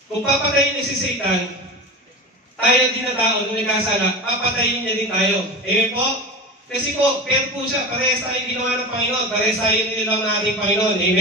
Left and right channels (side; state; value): both; normal; correlation 0.27